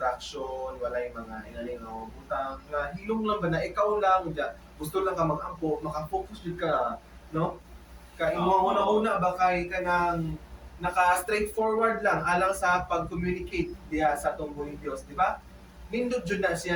walay mga inaling nga butang nga hilong lang ba na ikaw lang gusto lang ka mag-ampo, maka-focus jud ka, no, ka imo una ba kay kanang naka straightforward lang alang sa pag-communicate diya sa atong buhing Dios, di ba? Nindot jud na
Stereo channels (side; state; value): both; identical; correlation 1.00